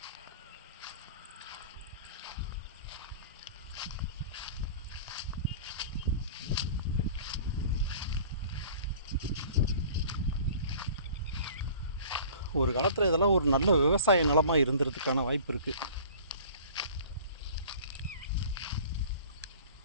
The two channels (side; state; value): both; inverted; correlation -0.44